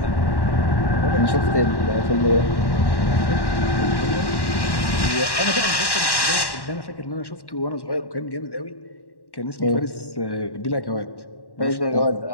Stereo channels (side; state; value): right; late; 1.1 ms